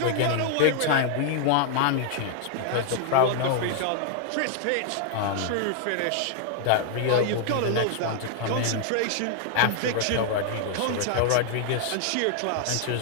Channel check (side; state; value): both; different; correlation 0.00